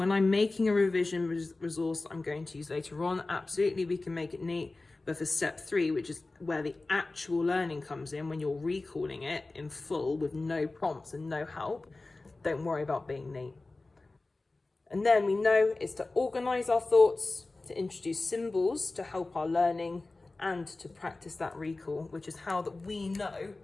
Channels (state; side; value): quieter; right; 3.2 dB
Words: I'm making a revision resource that I'm going to use later on, absolutely we can make it neat. But for step 3, which is where the actual learning comes in, when you're recalling it in full with no prompts and no help, don't worry about being neat. And then we know it's to organise our thoughts, to introduce symbols to help our learning, and to practice that recall, which is how that we know